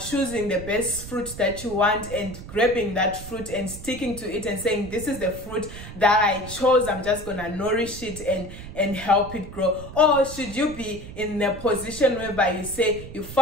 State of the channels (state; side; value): noise; right; rumble, 12 dB below the sound